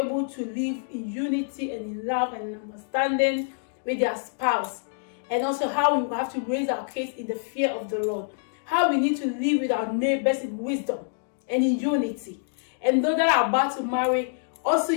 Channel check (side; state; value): right; silent; digital silence